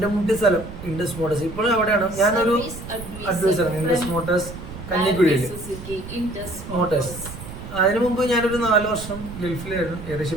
സ്ഥലം ഇൻഡസ് മോട്ടോഴ്സ്. ഇപ്പോഴും അവിടെയാണ് ഞാനൊരു അഡ്വൈസറാണ്. ഇൻഡസ് മോട്ടോഴ്സ് കഞ്ഞിക്കുഴിയില് മോട്ടോഴ്സ്. അതിനു മുമ്പ് ഞാനൊരു 4 വർഷം ഗൾഫിലായിരുന്നു.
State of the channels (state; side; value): noise; right; rumble, 12 dB below the sound